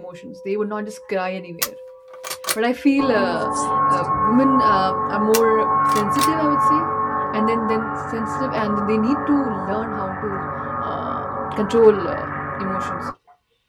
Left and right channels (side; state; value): both; identical; correlation 1.00